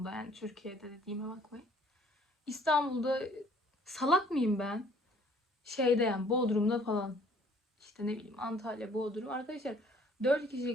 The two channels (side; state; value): both; normal; correlation 0.58